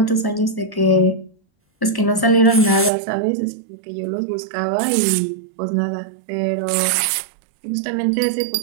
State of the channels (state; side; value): drops out; left; at 2.9 s